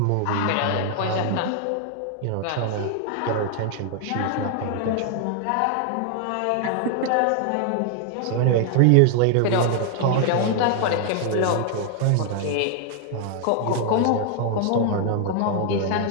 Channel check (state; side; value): different; both; correlation 0.00